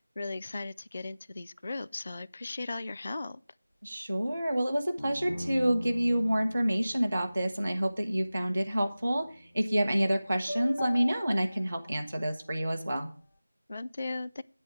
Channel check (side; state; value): both; inverted; correlation -0.97